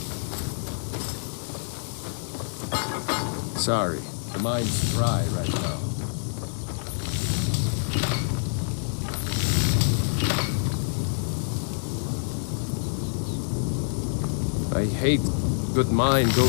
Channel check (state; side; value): silent; right; digital silence